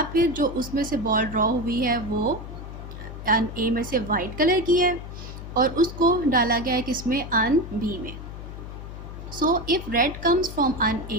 फिर जो उसमें से बॉल ड्रॉ हुई है वो अर्न ए में से वाइट कलर की है और उसको डाला गया है किसमें, अर्न बी में। So if red comes from urn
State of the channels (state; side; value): noise; left; hum, 11 dB below the sound